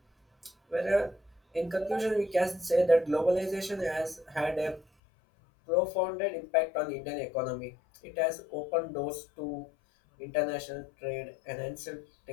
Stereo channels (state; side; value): drops out; right; at 4.9 s